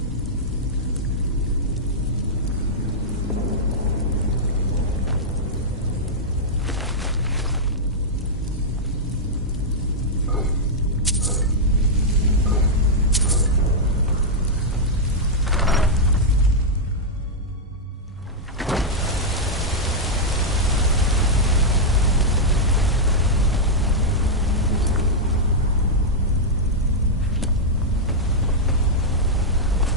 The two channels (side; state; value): both; normal; correlation -0.06